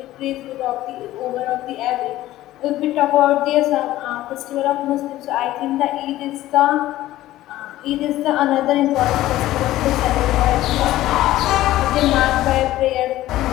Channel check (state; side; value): quieter; right; 15.2 dB